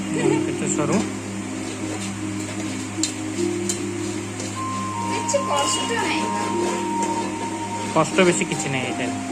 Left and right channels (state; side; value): identical; both; correlation 1.00